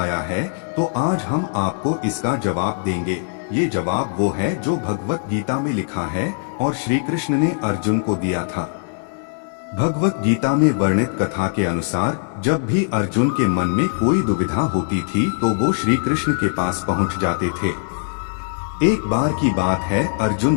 है तो आज हम आपको इसका जवाब देंगे। ये जवाब वो है जो भगवत गीता में लिखा है और श्री कृष्ण ने अर्जुन को दिया था। भगवत गीता में वर्णित कथा के अनुसार जब भी अर्जुन के मन में कोई दुविधा होती थी तो वो श्री कृष्ण के पास पहुंच जाते थे। एक बार की बात है,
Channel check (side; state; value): right; silent; digital silence